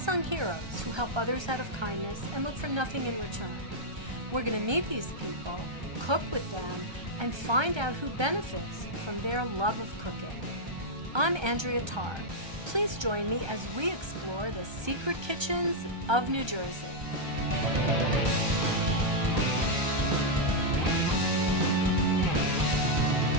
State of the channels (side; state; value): left; late; 1.3 ms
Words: heroes who help others out of kindness and look for nothing in return. We're going to meet these people, cook with them, and find out who benefits from their love of cooking. I'm Andrea Tarr. Please join me as we explore the secret kitchens of New Jersey.